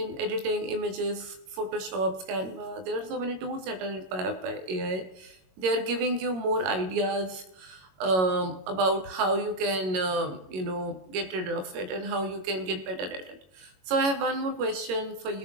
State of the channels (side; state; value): left; late; 22 ms